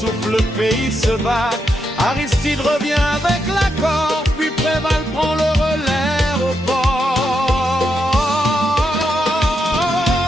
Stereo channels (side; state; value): both; normal; correlation 0.82